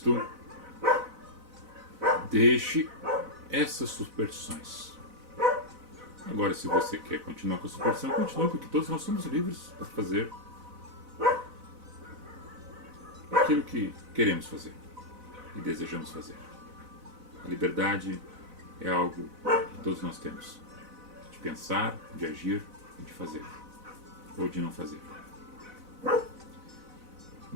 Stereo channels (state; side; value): late; left; 4.0 ms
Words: deixe essas superstições. Agora, se você quer continuar com a superstição, continue, porque todos nós somos livres para fazer aquilo que queremos fazer e desejamos fazer. A liberdade é algo que todos nós temos, de pensar, de agir e de fazer, ou de não fazer.